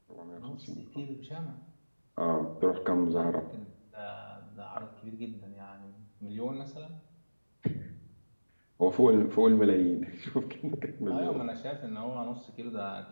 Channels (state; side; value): inverted; both; correlation -1.00